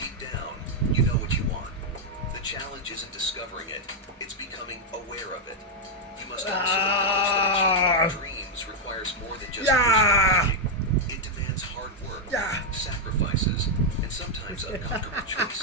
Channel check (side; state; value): both; normal; correlation -0.01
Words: down, you know what you want. The challenge isn't discovering it, it's becoming aware of it. You must also acknowledge that achieving your dreams requires more than just personal. It demands hard work, sacrifices, and sometimes uncomfortable